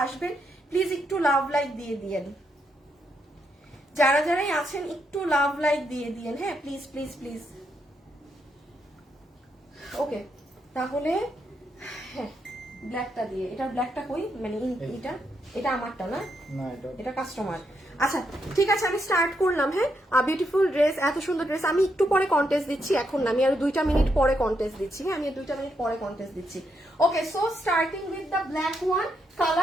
আসবেন প্লিজ একটু লাভ লাইক দিয়ে দিয়েন, যারা যারাই আছেন একটু লাভ লাইক দিয়ে দিয়েন, হ্যাঁ, প্লিজ প্লিজ প্লিজ। ওকে, তাহলে হ্যাঁ ব্ল্যাকটা দিয়ে, এটা ব্ল্যাকটা কই, মানে এটা আমারটা না, এটা কাস্টমার। আচ্ছা ঠিক আছে, আমি স্টার্ট করলাম, হ্যাঁ। বিউটিফুল ড্রেস, এত সুন্দর ড্রেস। আমি একটু পরে কন্টেস্ট দিচ্ছি, এখন না, আমি আরো 2টা মিনিট পরে কন্টেস্ট দিচ্ছি, হ্যাঁ, আমি 2টা মিনিট পরে কন্টেস্ট দিচ্ছি। Okay, so starting with the black one.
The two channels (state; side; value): normal; both; correlation 0.79